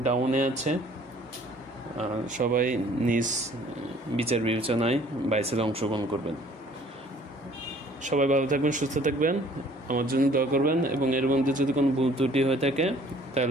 ডাউনে আছে, সবাই নিজ বিচার বিবেচনায় বাই সেলে অংশগ্রহণ করবেন। সবাই ভালো থাকবেন, সুস্থ থাকবেন, আমার জন্য দোয়া করবেন, এবং এর মধ্যে যদি কোনো ভুল ত্রুটি হয়ে থাকে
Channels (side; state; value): both; normal; correlation 0.55